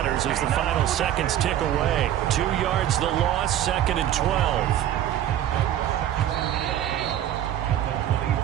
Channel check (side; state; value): left; quieter; 11.6 dB